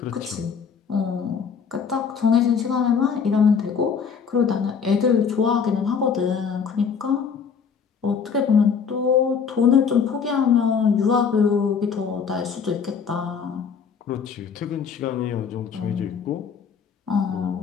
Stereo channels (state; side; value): quieter; right; 6.4 dB